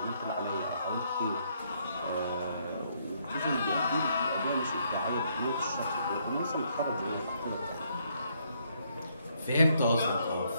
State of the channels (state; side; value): inverted; both; correlation -0.72